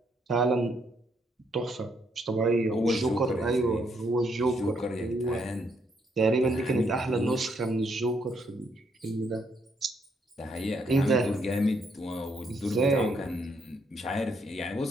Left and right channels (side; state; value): both; normal; correlation 0.73